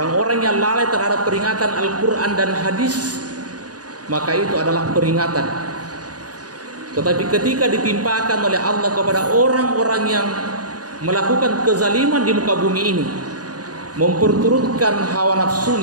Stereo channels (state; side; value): late; left; 0.68 ms